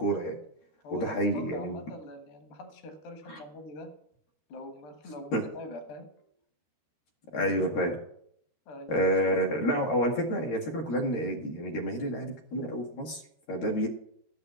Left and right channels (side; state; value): right; late; 13 ms